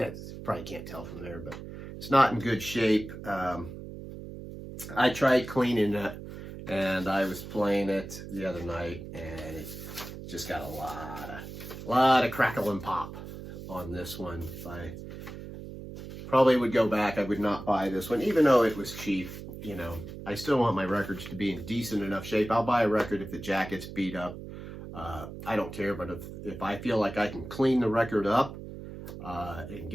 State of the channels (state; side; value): noise; right; hum, 11 dB below the sound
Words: probably can't tell from there, but it's not in good shape. I tried cleaning it, and I was playing it the other night, and it just got a lot of crackle and pop on this one. I probably would go back. I would not buy this one, even though it was cheap. You know, I still want my records to be in decent enough shape. I'll buy a record if the jacket's beat up. I don't care, but if I feel like I can clean the record up and